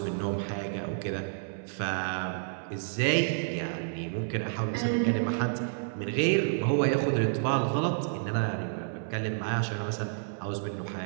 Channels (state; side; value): silent; left; 58 dB below the other